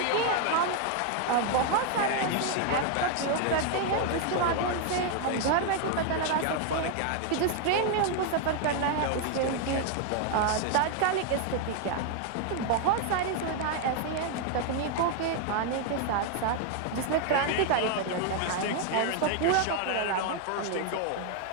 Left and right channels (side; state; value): both; different; correlation 0.00